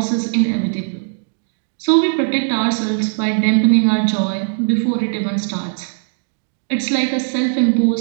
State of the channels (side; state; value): left; silent; digital silence